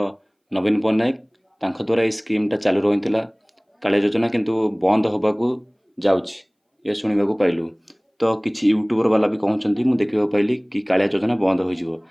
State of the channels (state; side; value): identical; both; correlation 1.00